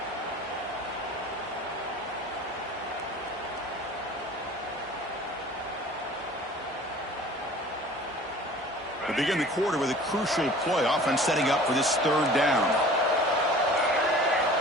We begin the quarter with a crucial play. Offense setting up for this third down.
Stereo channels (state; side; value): normal; both; correlation 0.45